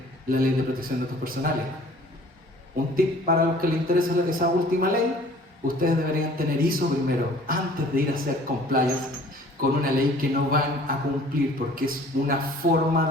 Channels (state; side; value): normal; both; correlation 0.51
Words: la Ley de Protección de Datos Personales. Un tip para los que les interesa esa última ley: ustedes deberían tener ISO primero, antes de ir a hacer compliance con una ley que no van a cumplir, porque es una forma